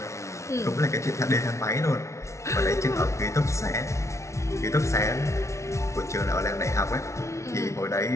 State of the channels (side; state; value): right; late; 0.14 ms